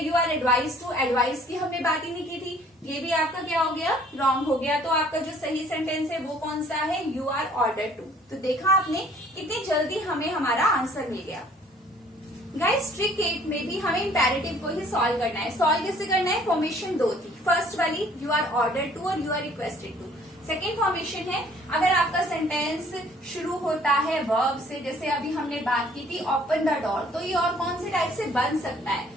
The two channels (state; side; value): normal; both; correlation 0.57